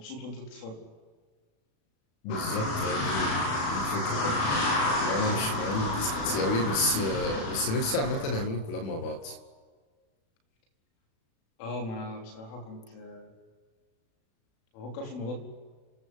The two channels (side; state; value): right; late; 36 ms